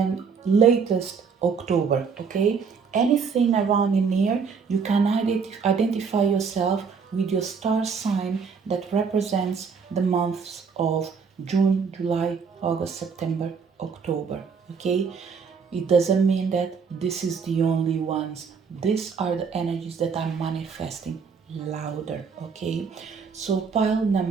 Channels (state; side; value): quieter; left; 5.8 dB